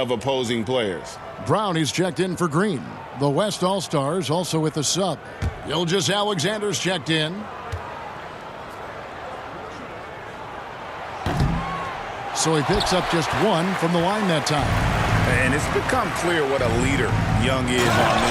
opposing players. Brown is checked in for Green. The West All-Stars also with the sub. Gilgeous-Alexander's checked in. So he picks up just 1 from the line that time. And it's become clear what a leader Young is on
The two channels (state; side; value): identical; both; correlation 1.00